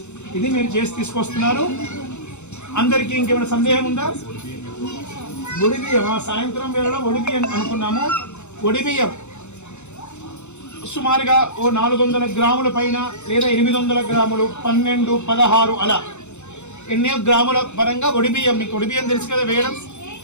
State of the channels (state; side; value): late; right; 0.83 ms